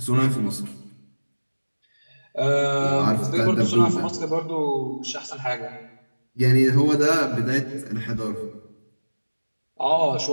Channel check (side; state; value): both; inverted; correlation -1.00